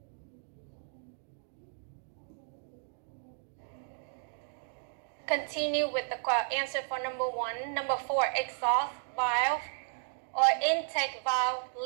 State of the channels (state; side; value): silent; left; digital silence